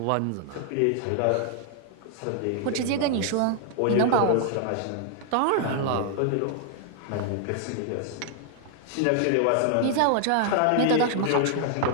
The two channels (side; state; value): both; different; correlation 0.00